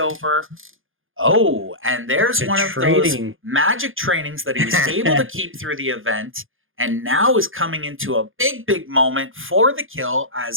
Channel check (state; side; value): late; left; 0.59 ms